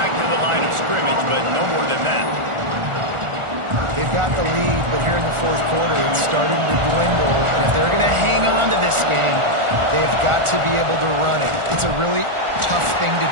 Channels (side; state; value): left; late; 1.4 ms